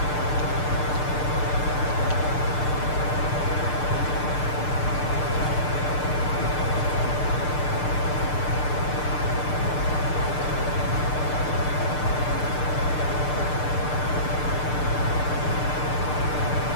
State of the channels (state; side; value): late; right; 6.7 ms